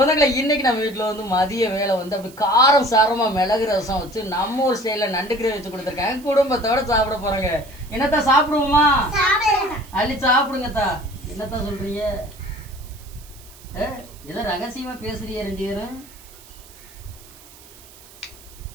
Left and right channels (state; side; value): noise; right; hiss, 22 dB below the sound